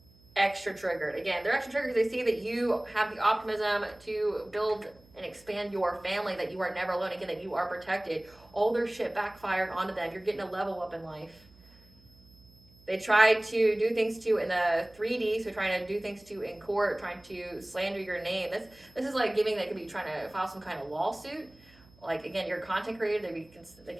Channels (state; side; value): noise; right; hum, 28 dB below the sound